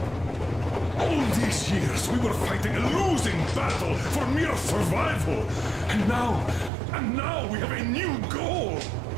All these years, we were fighting a losing battle for mere survival. And now we have a new goal.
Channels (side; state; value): left; drops out; at 6.7 s